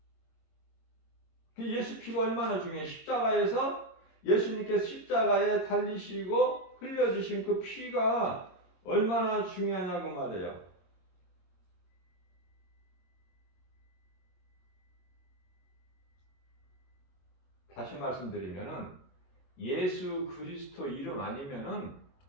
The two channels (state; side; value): late; right; 22 ms